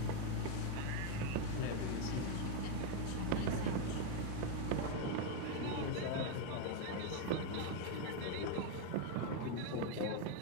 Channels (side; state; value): both; different; correlation 0.01